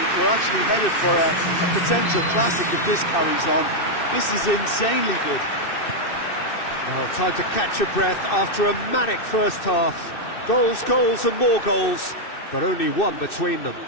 We're actually headed for a potential classic if this carries on. This is insanely good. Well, time to catch your breath after a manic first half. Goals, goals and more goals, but only one between them.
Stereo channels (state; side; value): late; right; 2.6 ms